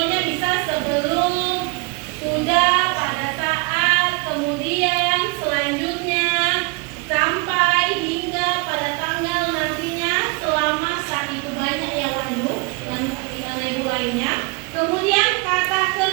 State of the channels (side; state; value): left; quieter; 30.6 dB